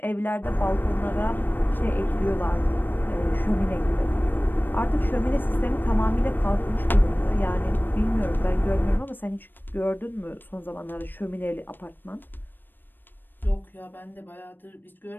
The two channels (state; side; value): late; right; 0.093 ms